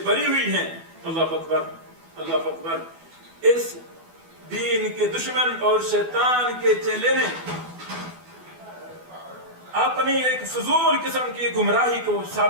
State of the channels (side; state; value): left; late; 12 ms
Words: بری ہوئی ہیں. اللہ اکبر. اللہ اکبر. اس دین کے دشمن اور شیطان کے چیلے نے اپنی ایک فضول قسم کی گمراہی کو